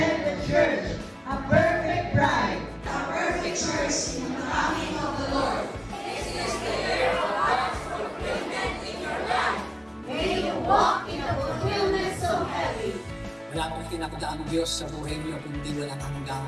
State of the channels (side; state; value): both; identical; correlation 1.00